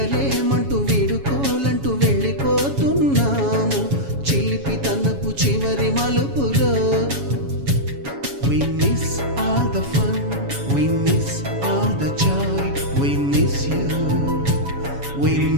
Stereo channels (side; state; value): left; late; 7.2 ms